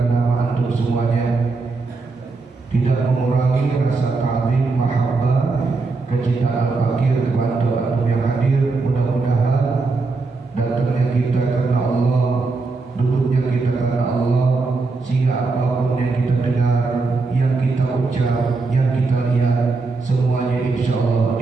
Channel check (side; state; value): left; quieter; 3.9 dB